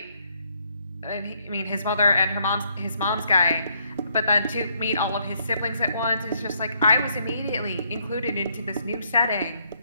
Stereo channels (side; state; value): both; inverted; correlation -0.71